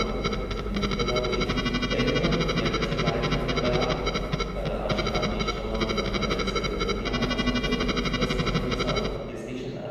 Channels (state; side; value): identical; both; correlation 1.00